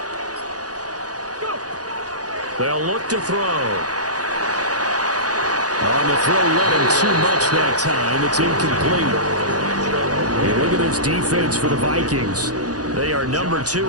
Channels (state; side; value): late; left; 0.68 ms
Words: Go. They'll look to throw. On the throw, let him too much that time. It's incomplete. Hey, look at this defense for the Vikings. They are number